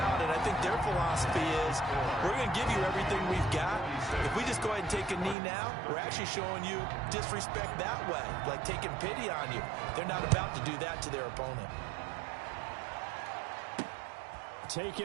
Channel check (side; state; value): left; drops out; at 5.4 s